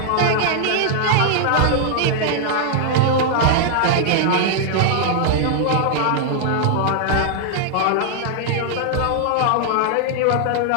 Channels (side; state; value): both; different; correlation 0.00